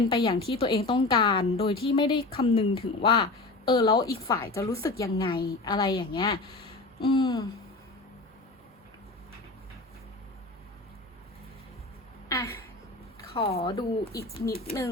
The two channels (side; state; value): right; quieter; 3.2 dB